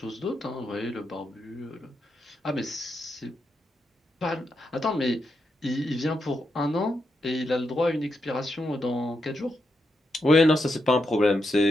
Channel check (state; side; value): normal; both; correlation 0.84